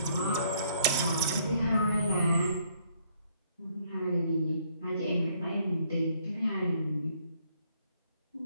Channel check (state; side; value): inverted; both; correlation -0.67